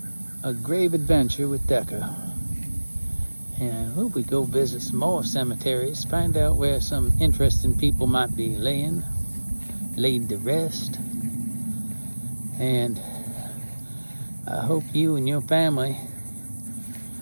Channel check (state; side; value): inverted; both; correlation -1.00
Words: a grave adventure with Decker. And hope we go visit some more cemeteries, find out where some interesting people might be laid to rest. And I hope you and your family